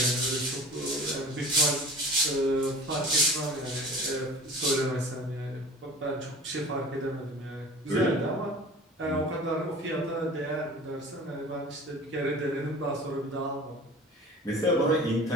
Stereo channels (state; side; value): normal; both; correlation 0.42